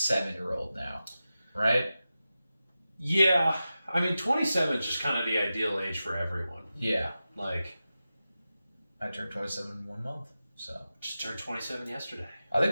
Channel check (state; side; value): inverted; both; correlation -0.93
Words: now, right? Yeah, I mean 27 is just kind of the ideal age for everyone. Yeah, like. I turned 27 in 1 month, so. Just turned 27 yesterday. I